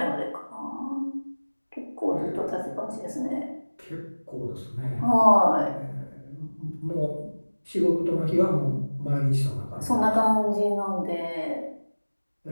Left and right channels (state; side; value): inverted; both; correlation -1.00